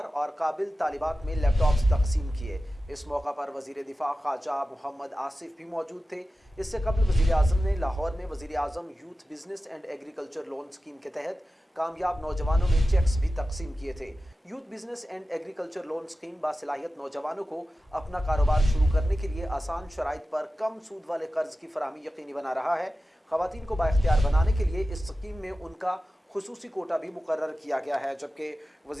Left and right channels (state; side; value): normal; both; correlation 0.94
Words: और काबिल तालिबात में लैपटॉप्स तकसीम किए। इस मौका पर वज़ीर दिफा ख्वाजा मोहम्मद आसिफ भी मौजूद थे। इससे कबल वज़ीर आज़म ने लाहौर में वज़ीर आज़म youth business and agriculture loan scheme के तहत कामयाब नौजवानों में चेक्स भी तकसीम किए थे। Youth business and agriculture loan scheme बासलाहियत नौजवानों को अपना कारोबार शुरू करने के लिए आसान शराइत पर कम सूद वाले कर्ज की फराहमी यकीनी बना रहा है। ख़वातीन को बाइख्तियार बनाने के लिए इस स्कीम में उनका खुसूसी कोटा भी मुकर्रर किया गया है। जबकि